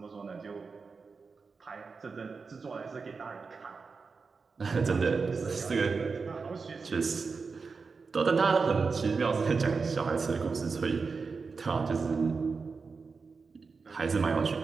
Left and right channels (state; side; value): quieter; left; 4.8 dB